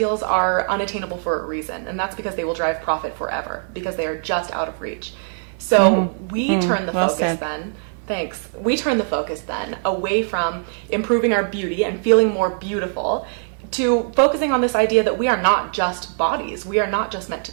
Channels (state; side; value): silent; left; 62 dB below the other